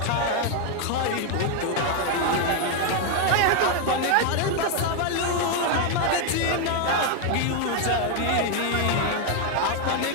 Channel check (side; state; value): both; different; correlation 0.01